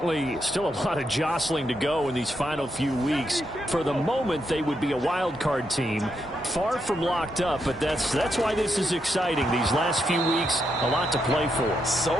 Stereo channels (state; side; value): normal; both; correlation 0.81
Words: still a lot of jostling to go in these final few weeks. For the moment, they would be a wild card team. Far from locked up, but that's why this is exciting. These last few weeks, a lot to play for. So